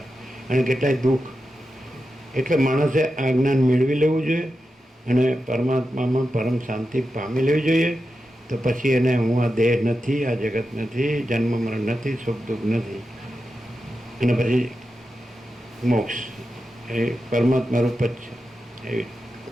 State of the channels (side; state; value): both; normal; correlation 0.90